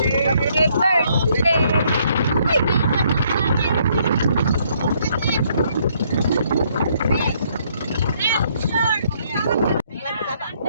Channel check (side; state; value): both; inverted; correlation -0.69